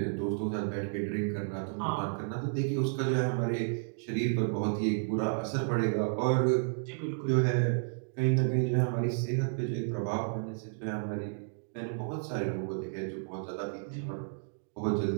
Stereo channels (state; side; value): silent; left; digital silence